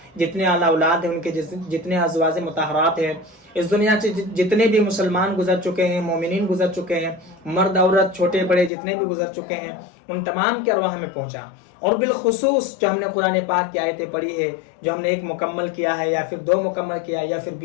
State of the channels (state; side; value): drops out; right; at 8.7 s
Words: जितने आला औलाद हैं, उनके जितने अज़वाज मुतहरात हैं, इस दुनिया से जितने भी मुसलमान गुजर चुके हैं, मोमिनीन गुजर चुके हैं, मर्द औरत छोटे बड़े जितने भी गुजर चुके हैं, उन तमाम के अरवाह में पहुंचा। और बिलखुसूस जो हमने कुरान पाक की आयतें पढ़ी है, जो हमने 1 मुकम्मल किया है या फिर 2 मुकम्मल किया या फिर